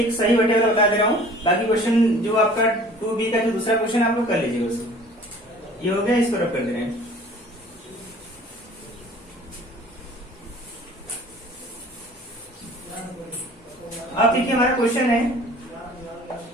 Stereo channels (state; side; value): normal; both; correlation 0.48